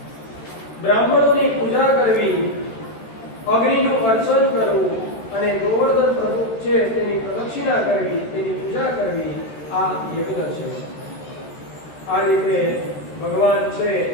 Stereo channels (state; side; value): late; right; 13 ms